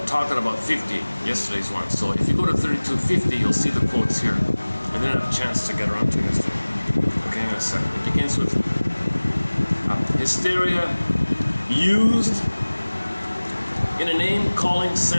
talking about 50, yesterday's one. So if you go to 3250, you'll see the quotes here. I didn't have a chance to get around to yesterday. Okay, hang on a second. It begins with hysteria used in a name-calling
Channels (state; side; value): inverted; both; correlation -1.00